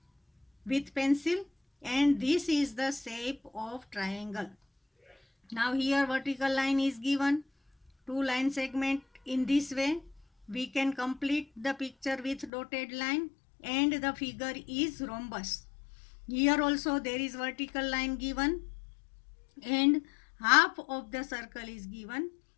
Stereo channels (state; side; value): drops out; right; at 12.5 s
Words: with pencil and this is the shape of triangle. Now here vertical line is given. 2 line segment. In this way we can complete the picture with dotted line and the figure is rhombus. Here also there is vertical line given and half of the circle is given.